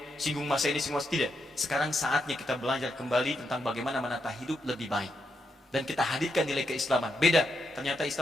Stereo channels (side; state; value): both; normal; correlation 0.82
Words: singgung masa ini, singgung masa tidak. Sekarang saatnya kita belajar kembali tentang bagaimana menata hidup lebih baik. Dan kita hadirkan nilai keislaman. Beda, ternyata